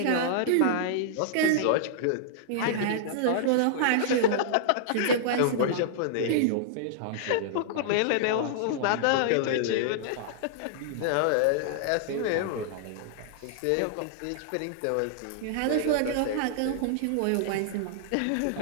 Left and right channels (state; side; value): different; both; correlation -0.01